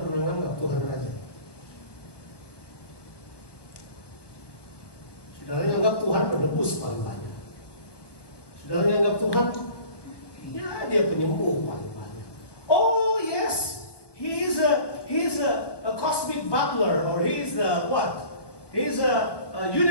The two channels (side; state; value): right; late; 1.2 ms